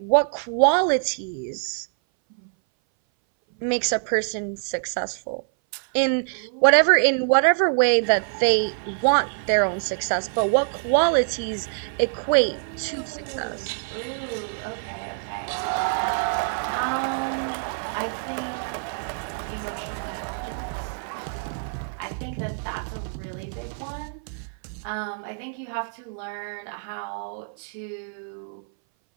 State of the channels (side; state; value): left; silent; 59 dB below the other